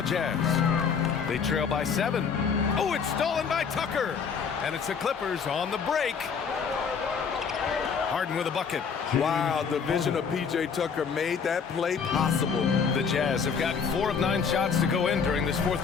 Jazz. They trail by 7. Oh, it's stolen by Tucker. And it's the Clippers on the break. Harden with a bucket. Wow, the vision of P.J. Tucker made that play possible. The Jazz have gotten 4 of 9 shots to go in during this fourth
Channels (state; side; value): quieter; right; 6.2 dB